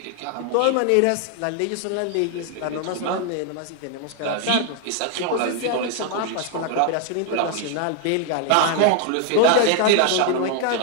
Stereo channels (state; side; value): different; both; correlation 0.00